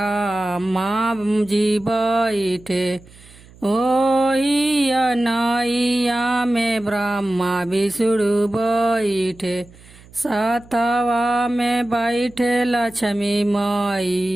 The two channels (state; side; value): noise; right; hum, 24 dB below the sound